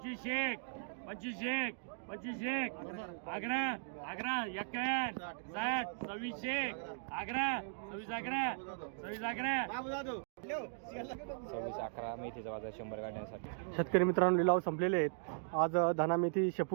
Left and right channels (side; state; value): left; silent; digital silence